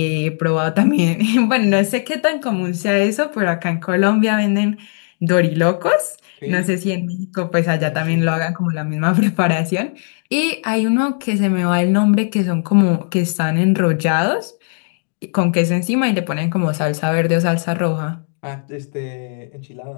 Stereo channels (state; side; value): silent; right; 56 dB below the other